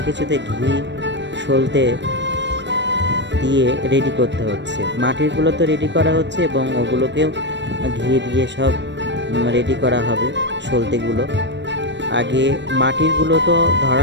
কিছুতে ঘি সলতে দিয়ে রেডি করতে হচ্ছে। মাটিরগুলো তো রেডি করা হচ্ছে এবং ওগুলোকেও ঘি দিয়ে সব রেডি করা হবে। সলতেগুলো আগে মাটিরগুলো তো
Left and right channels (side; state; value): left; late; 0.52 ms